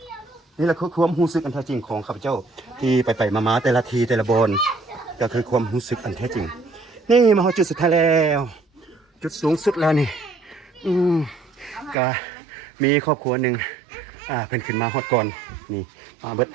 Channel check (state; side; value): drops out; left; at 12.0 s